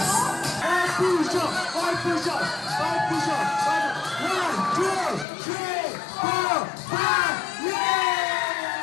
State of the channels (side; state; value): right; drops out; at 5.2 s